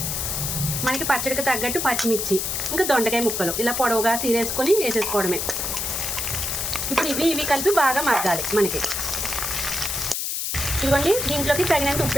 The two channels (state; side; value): noise; left; hiss, 2 dB below the sound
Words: మనకి పచ్చడికి తగ్గట్టు పచ్చిమిర్చి, ఇంకా దొండకాయ ముక్కలు ఇలా పొడవుగా తీరేసుకొని వేసేసుకోవడమే. ఇప్పుడు ఇవి కలిపి బాగా మగ్గాలి మనకి. ఇదిగోండి, దీంట్లోకి తగినంత